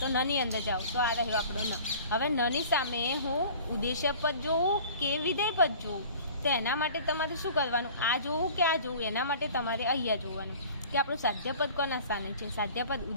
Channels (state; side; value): inverted; both; correlation -0.45